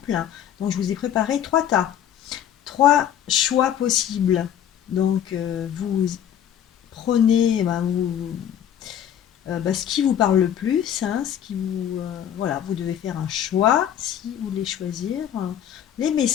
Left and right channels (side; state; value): right; quieter; 10.0 dB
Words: Donc je vous ai préparé trois tas, trois choix possibles. Donc vous prenez, ce qui vous parle le plus, hein, voilà, vous devez faire un choix si vous voulez choisir les